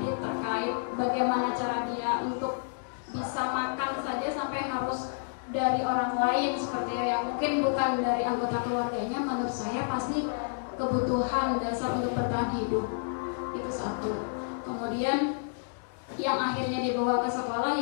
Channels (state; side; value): silent; right; digital silence